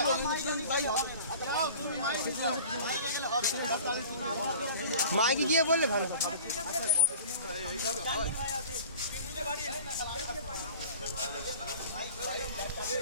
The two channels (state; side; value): inverted; both; correlation -0.43